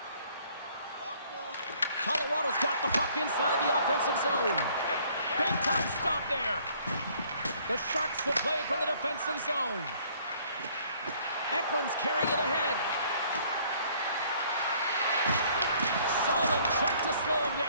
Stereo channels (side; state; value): both; inverted; correlation -0.60